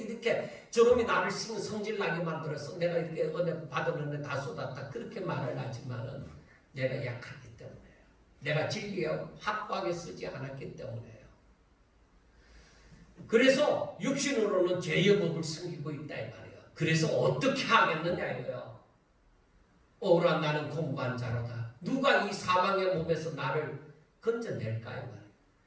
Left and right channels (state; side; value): identical; both; correlation 1.00